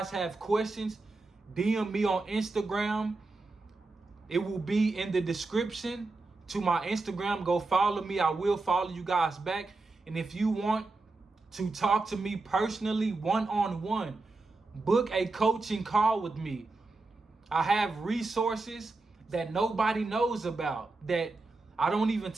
have questions, DM me on Instagram. It will be in the description to my Instagram. Go follow me. I will follow you guys back. And if you want to talk to me personally, one-on-one, book a coaching call with me. I have resources that nobody knows about, that I don't even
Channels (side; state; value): left; quieter; 3.4 dB